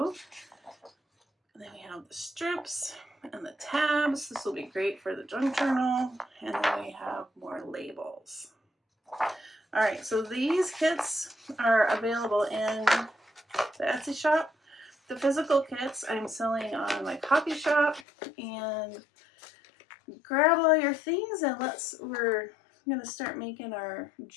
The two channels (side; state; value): right; drops out; at 18.1 s